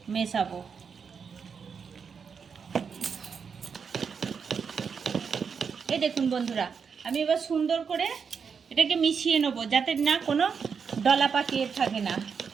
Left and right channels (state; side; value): quieter; left; 6.2 dB